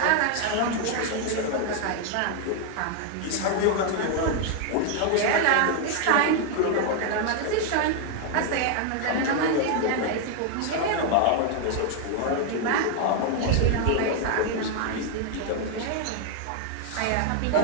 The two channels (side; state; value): both; different; correlation 0.00